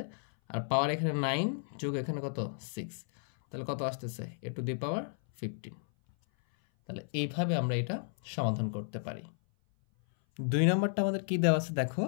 আর পাওয়ার এখানে 9 যোগ এখানে কত? 6। তাহলে কত আসতেছে? a টু দি পাওয়ার 15। তাহলে এইভাবে আমরা এটা সমাধান করতে পারি। 2 নম্বরটা আমাদের কি দেওয়া আছে দেখো,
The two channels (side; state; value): right; silent; 56 dB below the other